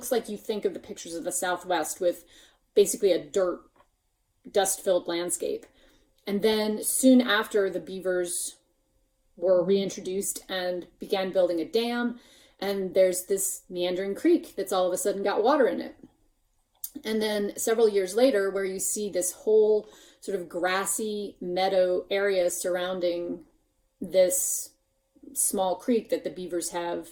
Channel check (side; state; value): both; identical; correlation 1.00